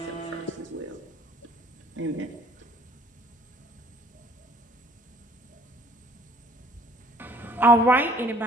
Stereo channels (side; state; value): both; normal; correlation 0.56